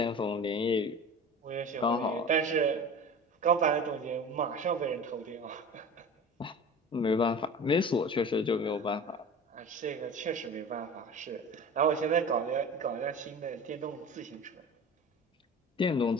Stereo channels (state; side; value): normal; both; correlation 0.36